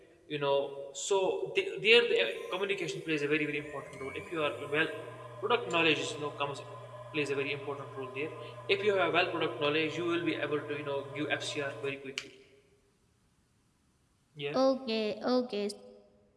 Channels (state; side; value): identical; both; correlation 1.00